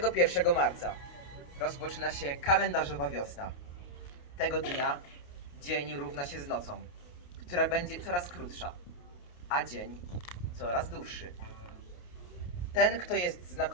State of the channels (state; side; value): late; right; 28 ms